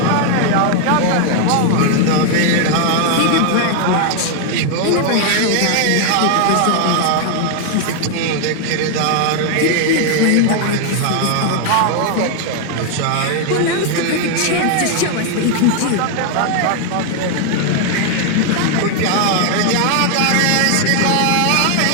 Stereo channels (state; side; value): different; both; correlation 0.00